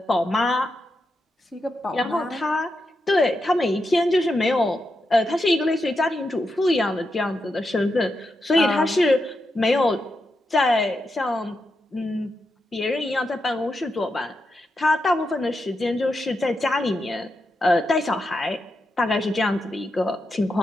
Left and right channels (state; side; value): normal; both; correlation 0.86